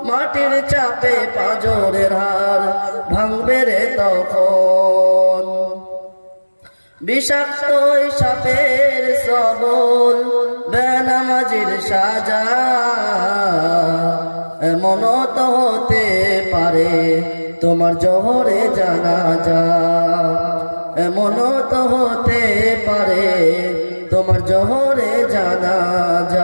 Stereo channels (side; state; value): both; inverted; correlation -1.00